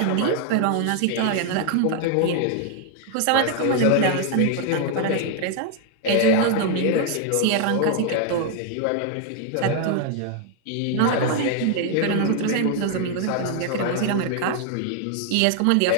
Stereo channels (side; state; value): both; different; correlation 0.00